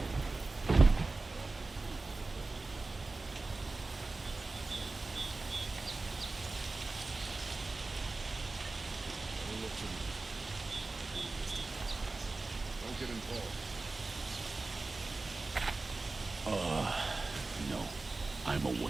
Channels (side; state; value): left; quieter; 3.5 dB